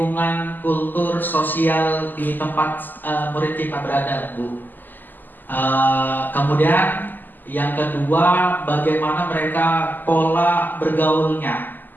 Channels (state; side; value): late; right; 0.088 ms